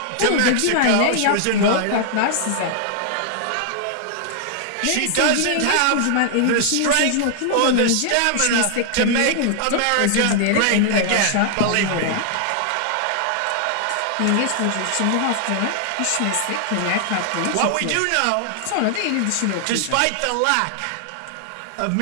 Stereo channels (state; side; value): different; both; correlation 0.00